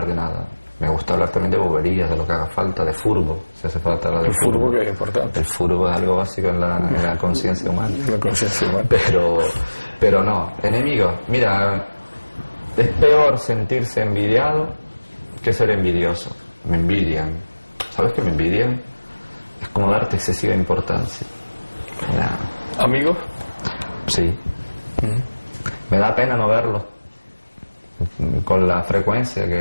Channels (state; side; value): inverted; both; correlation -1.00